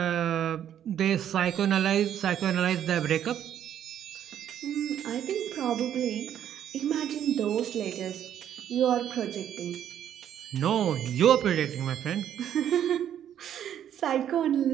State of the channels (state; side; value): quieter; left; 10.1 dB